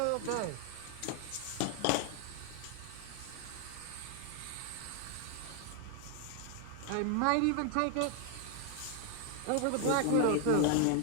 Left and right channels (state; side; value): different; both; correlation 0.00